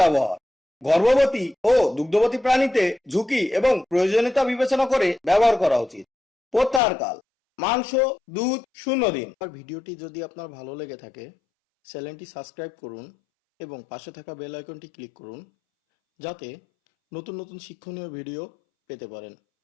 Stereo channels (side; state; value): right; drops out; at 6.8 s